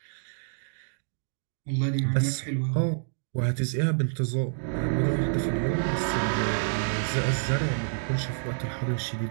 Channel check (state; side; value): silent; left; digital silence